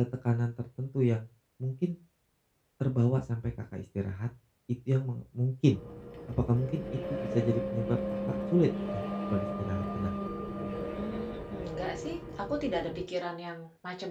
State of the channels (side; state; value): both; identical; correlation 1.00